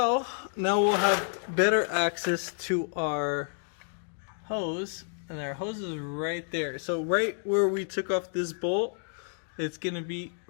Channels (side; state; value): right; silent; digital silence